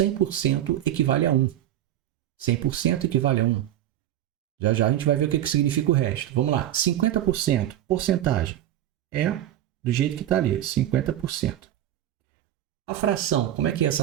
equivale a 1. 100% equivale a 1. Já já a gente vai ver o que significa o resto. Vamos lá. 50%, porcentagem. É do jeito que está ali, 50%. A fração, como é que é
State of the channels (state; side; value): quieter; left; 12.5 dB